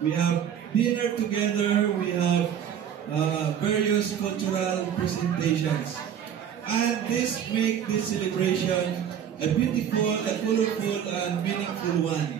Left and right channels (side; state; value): left; quieter; 8.9 dB